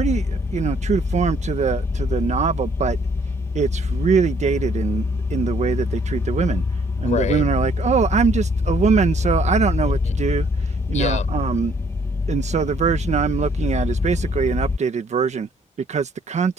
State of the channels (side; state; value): both; normal; correlation 0.64